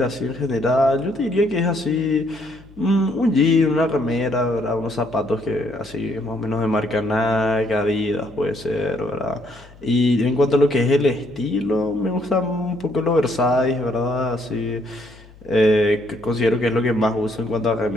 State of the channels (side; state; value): left; noise; hum, 23 dB below the sound